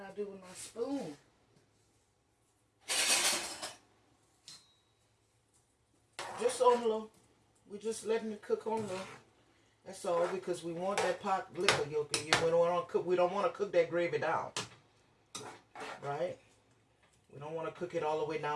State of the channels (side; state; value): both; identical; correlation 1.00